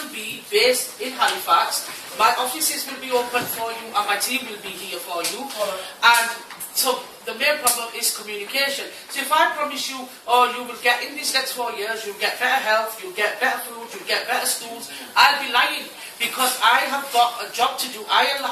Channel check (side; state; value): both; identical; correlation 1.00